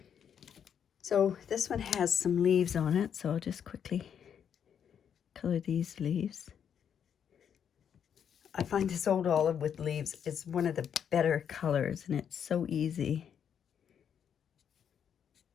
So this one has some leaves on it, so I'll just quickly color these leaves. I find this old olive with leaves is one of the better colors, and it's so easy.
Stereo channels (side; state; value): right; quieter; 8.2 dB